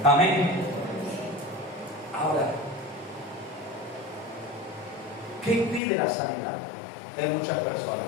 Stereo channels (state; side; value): drops out; right; at 5.8 s